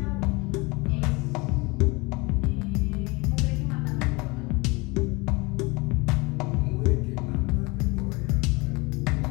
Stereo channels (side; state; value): right; quieter; 25.5 dB